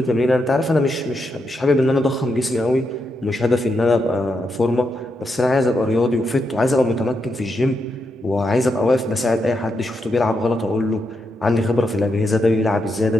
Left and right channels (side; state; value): both; normal; correlation 0.83